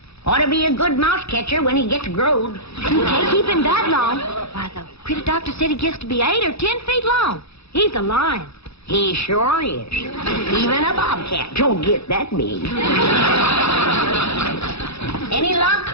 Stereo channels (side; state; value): right; late; 0.79 ms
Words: Ought to be a good mouse catcher when he gets growed. You can't keep him that long. Why, the critter doctor said he gets to be 8 or 10 feet long. He's a lion. He sure is. Even a bobcat don't get that big. Any luck?